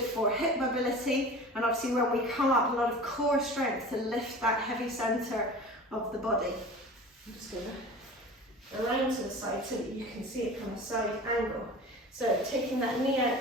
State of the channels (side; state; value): both; normal; correlation 0.37